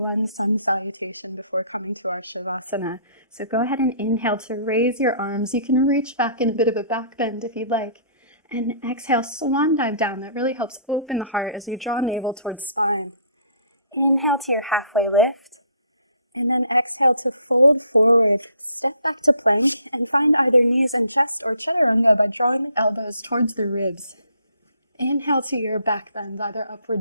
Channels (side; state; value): both; inverted; correlation -0.60